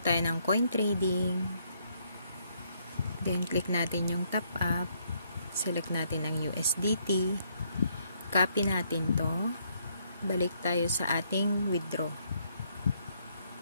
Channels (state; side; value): inverted; both; correlation -0.71